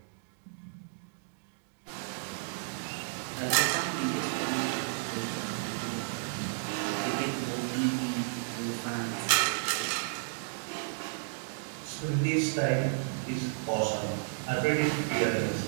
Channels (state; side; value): silent; left; digital silence